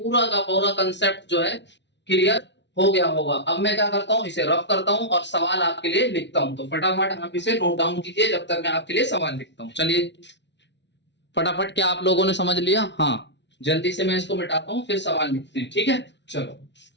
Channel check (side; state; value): right; late; 0.51 ms